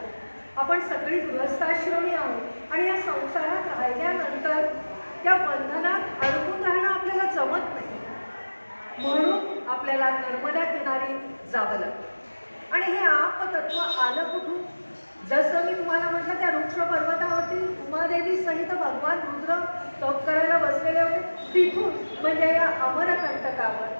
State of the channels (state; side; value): inverted; both; correlation -1.00